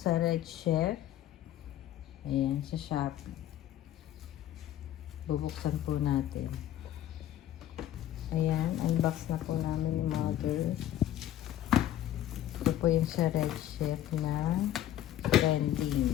Red Chef. Ayan, sa Shopee. Bubuksan po natin. Ayan, unbox na po namin yung mother. Ito po yung sa Red Chef na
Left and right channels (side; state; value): right; quieter; 12.2 dB